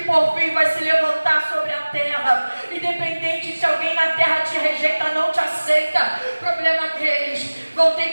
fim vai se levantar sobre a terra. Independente se alguém na terra te rejeita, não te aceita, problema deles. Vão ter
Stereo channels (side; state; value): both; inverted; correlation -1.00